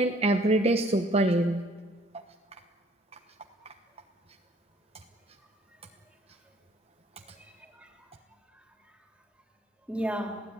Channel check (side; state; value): both; normal; correlation 0.59